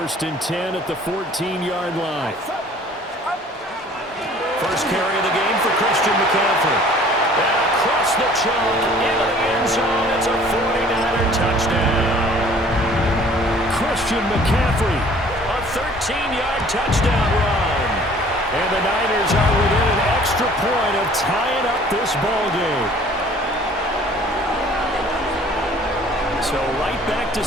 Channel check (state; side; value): normal; both; correlation 0.52